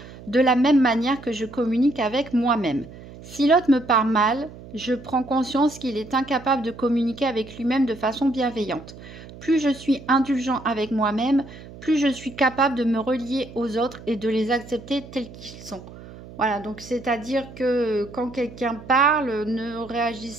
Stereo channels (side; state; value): right; noise; hum, 17 dB below the sound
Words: de la même manière que je communique avec moi-même. Si l'autre me parle mal, je prends conscience qu'il est incapable de communiquer avec lui-même de façon bienveillante. Plus je suis indulgent avec moi-même, plus je suis capable de me relier aux autres et de les accepter tels qu'ils sont. Voilà, donc c'est-à-dire que quand quelqu'un parle, ne